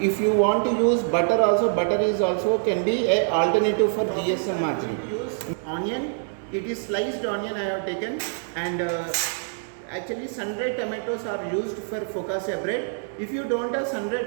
If you want to use butter also, butter is also can be a alternative for GSM margarine. Use onion, it is sliced onion I have taken, and actually sun-dried tomatoes are used for focaccia bread. If you don't have sun-dried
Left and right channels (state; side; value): silent; left; digital silence